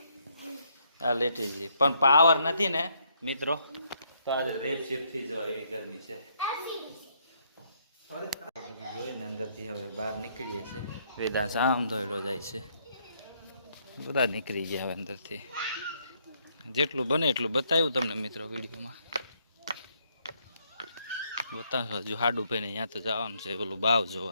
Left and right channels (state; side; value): inverted; both; correlation -0.71